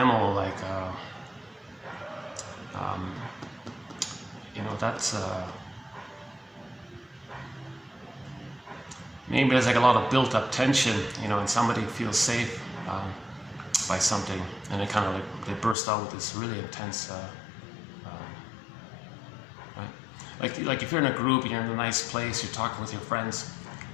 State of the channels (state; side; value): drops out; right; at 15.8 s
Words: like, that's, maybe there's like a lot of built-up tension, and somebody feels safe by something, and they kind of they burst out with this really intense, right? Like if you're in a group and you're in a nice place, you're talking with your friends,